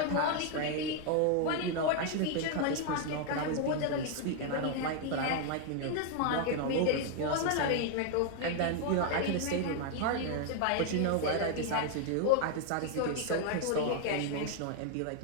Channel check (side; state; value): both; different; correlation 0.00